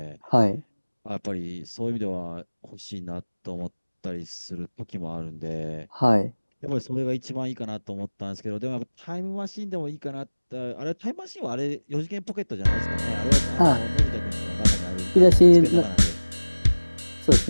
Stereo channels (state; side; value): inverted; both; correlation -1.00